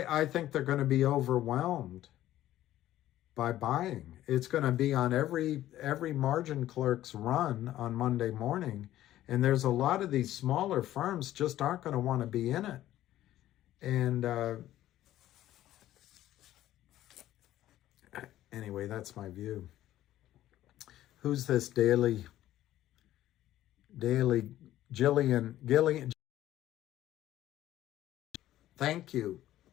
think they're going to be overwhelmed by buying. It's going to be on every margin clerk's run on Monday morning. And there's a lot of these smaller firms just aren't going to want to be in it. And anyway, that's my view. Who's this Gillian? Thank you.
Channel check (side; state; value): right; quieter; 13.7 dB